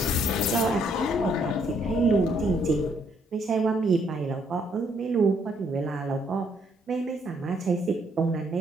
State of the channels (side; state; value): both; normal; correlation 0.70